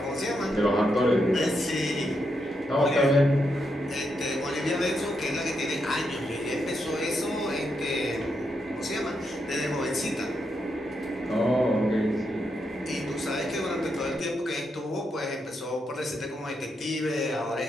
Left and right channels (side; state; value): both; normal; correlation 0.82